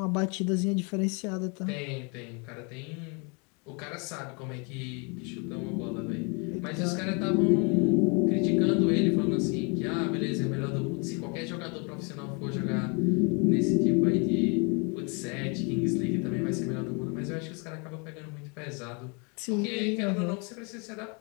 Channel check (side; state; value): right; quieter; 33.3 dB